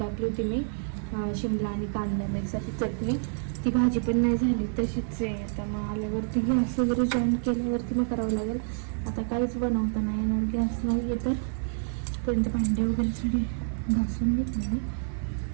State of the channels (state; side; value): silent; left; 58 dB below the other